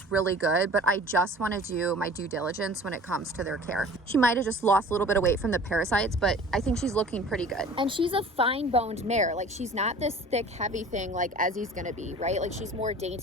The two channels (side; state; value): both; normal; correlation 0.44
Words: really good, but I just want to do my due diligence when it comes to their care. She might have just lost a little bit of weight from the parasites, but I think she's looking pretty good. And she's a fine-boned mare. Like, she's not this thick, heavy thing like Ezzy's gonna be, right? Like, she's more